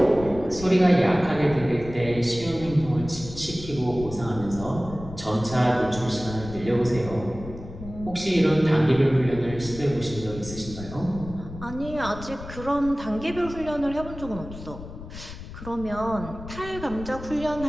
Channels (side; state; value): left; noise; rumble, 12 dB below the sound